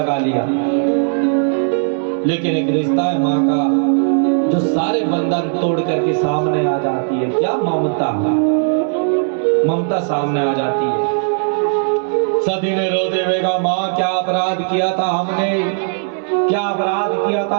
लिया। लेकिन एक रिश्ता है माँ का जो सारे बंधन तोड़ करके सामने आ जाती है। क्या ममता, ममता सामने आ जाती है। सती ने रोते हुए कहा, माँ क्या अपराध किया था हमने, क्या अपराध किया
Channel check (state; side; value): silent; left; 68 dB below the other